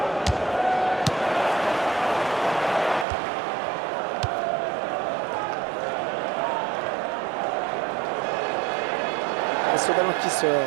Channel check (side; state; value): left; drops out; at 3.1 s